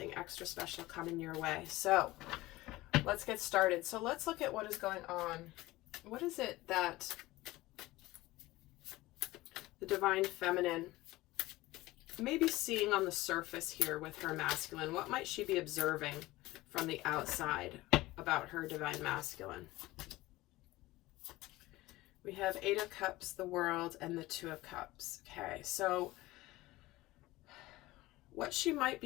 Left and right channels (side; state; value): right; quieter; 18.7 dB